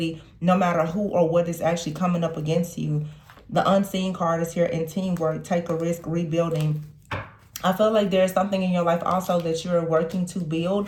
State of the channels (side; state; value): both; identical; correlation 1.00